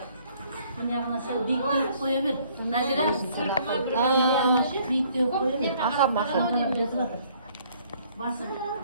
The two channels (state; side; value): inverted; both; correlation -0.61